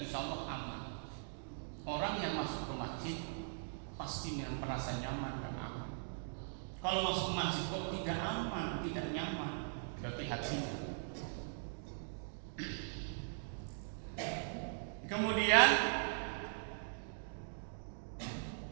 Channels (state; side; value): silent; left; digital silence